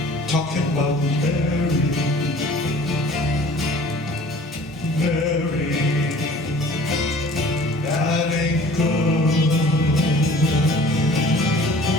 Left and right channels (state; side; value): normal; both; correlation 0.48